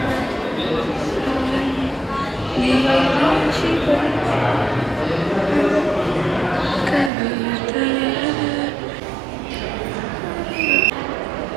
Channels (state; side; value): drops out; left; at 7.1 s